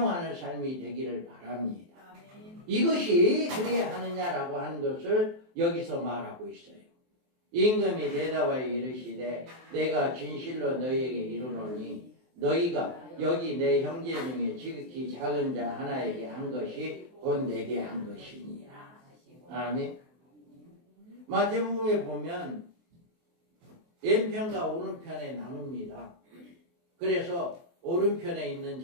삶이 되기를 바랍니다. 이것이 그래야 하느냐라고 하는 것을 여기서 말하고 있어요. 임금이 대답하여 이르시되 내가 진실로 너희에게 이르노니 너희가 여기 내 형제 중에 지극히 작은 자 하나에게 한 것이 곧 내게 한 것이니라. 아멘. 마태복음에 보면 왼편과 오른편에 나눕니다. 그래서 오른편에 있는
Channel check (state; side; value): late; left; 23 ms